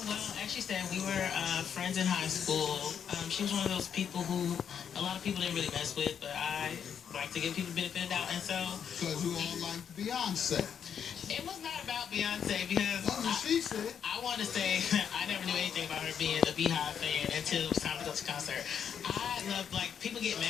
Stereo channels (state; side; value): quieter; right; 8.0 dB